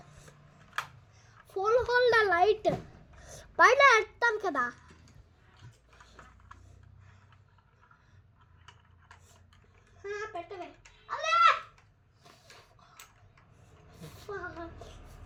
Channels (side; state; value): both; identical; correlation 1.00